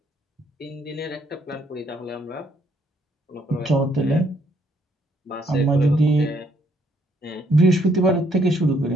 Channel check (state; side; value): normal; both; correlation 0.70